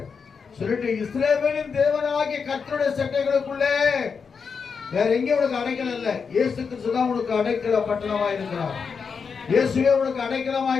சொல்லிட்டு, இஸ்ரவேலின் தேவனாகிய கர்த்தருடைய சட்டைகளுக்குள்ளே வேற எங்கே உனக்கு அடைக்கலம் இல்லை. இயேசு கிறிஸ்து தான் உனக்கு அடைக்கல பட்டணமாய் இருக்கிறார். இயேசுவே உனக்கு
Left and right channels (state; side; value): quieter; right; 5.7 dB